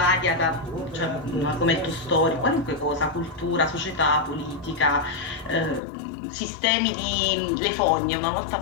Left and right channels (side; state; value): right; drops out; at 5.8 s